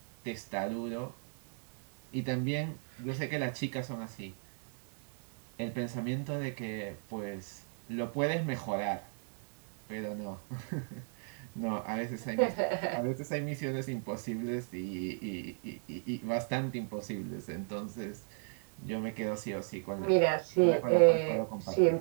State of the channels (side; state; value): left; silent; 54 dB below the other